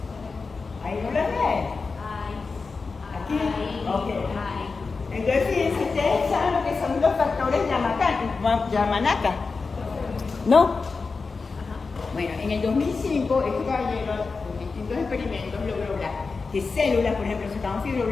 ¿Ahí no las ven? ¿Aquí? Ok. Entonces, fíjense, ustedes saben lo que son los factores Yamanaka, ¿no? Bueno, en el 2005, este caballero, con distintos experimentos, logró que células, por ejemplo, sacaban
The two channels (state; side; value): quieter; right; 4.4 dB